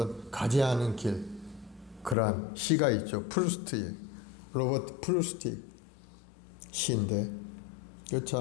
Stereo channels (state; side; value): drops out; right; at 2.1 s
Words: 가지 않은 길, 그러한 시가 있죠. 프루스트의 로버트 프루스트 시인데 이거